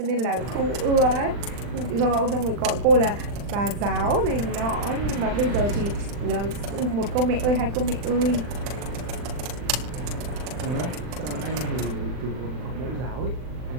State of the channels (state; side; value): late; left; 40 ms